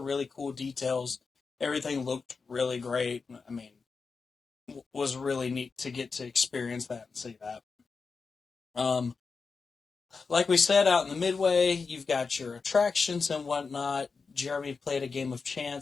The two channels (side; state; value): right; quieter; 4.8 dB